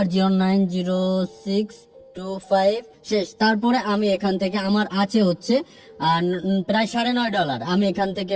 090625 শেষ। তারপরে আমি এখান থেকে আমার আছে হচ্ছে প্রায় $9.5। আমি এখান থেকে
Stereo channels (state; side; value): identical; both; correlation 1.00